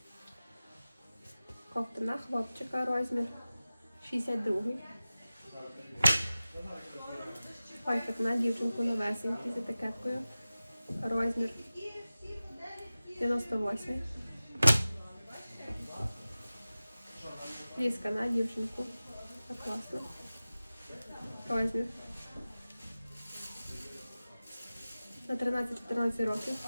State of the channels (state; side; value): inverted; both; correlation -0.96